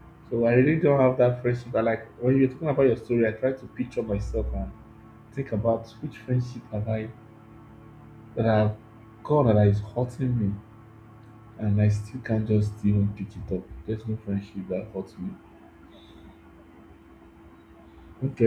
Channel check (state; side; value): identical; both; correlation 1.00